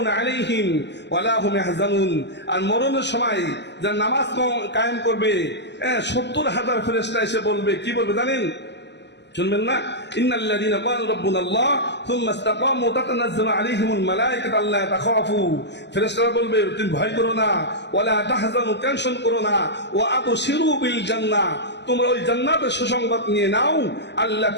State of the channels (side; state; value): right; late; 0.50 ms